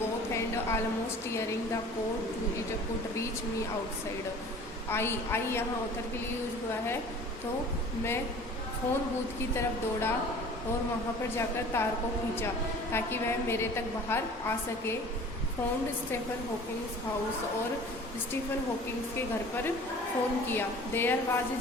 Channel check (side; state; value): both; normal; correlation 0.45